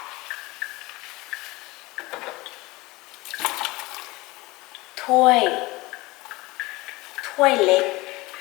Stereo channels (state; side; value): quieter; right; 21.6 dB